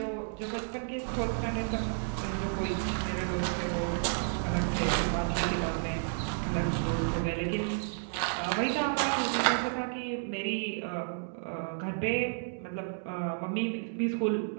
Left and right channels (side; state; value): left; silent; digital silence